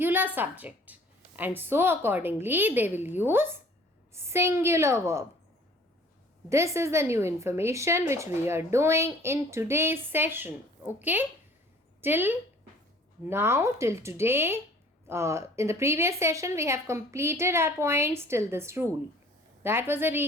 subject. And so accordingly, they will use singular verb. This is the new information which we are doing in today's session. Okay? Till now, till today, in the previous session, we have completed our points till this rule. That was a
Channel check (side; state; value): both; normal; correlation 0.52